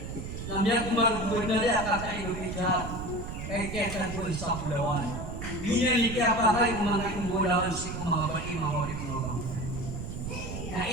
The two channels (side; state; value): right; noise; rumble, 7 dB below the sound